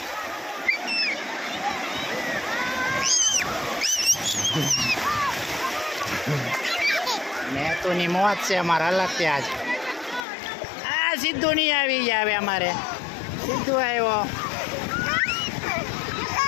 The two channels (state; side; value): drops out; right; at 10.2 s